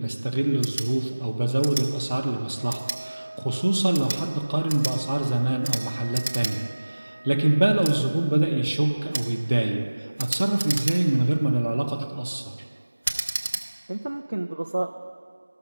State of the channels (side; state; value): both; inverted; correlation -1.00